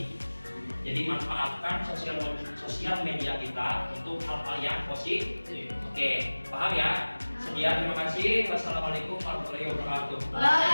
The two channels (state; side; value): inverted; both; correlation -1.00